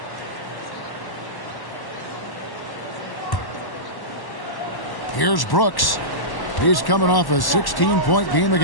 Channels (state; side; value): late; right; 1.1 ms